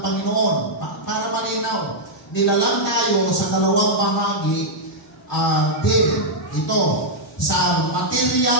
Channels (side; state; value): both; normal; correlation -0.06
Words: Panginoon. Para malinaw, nilalang tayo sa dalawang bahagi din. Ito, sa